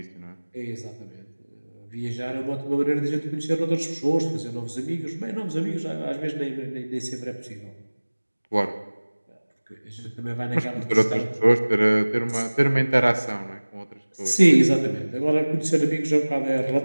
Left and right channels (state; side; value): inverted; both; correlation -1.00